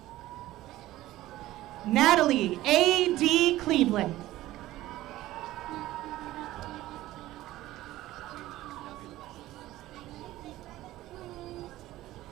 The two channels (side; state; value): left; quieter; 15.8 dB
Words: Natalie A.D. Cleveland.